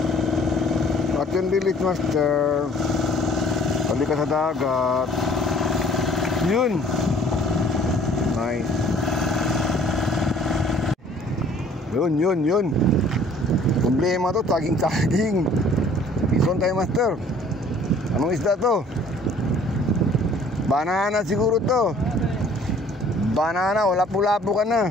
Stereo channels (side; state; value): both; normal; correlation 0.55